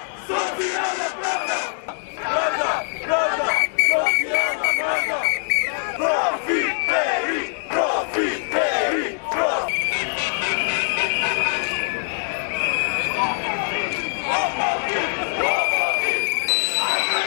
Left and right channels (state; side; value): silent; right; digital silence